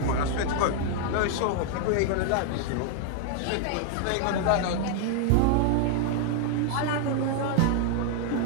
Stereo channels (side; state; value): both; different; correlation 0.00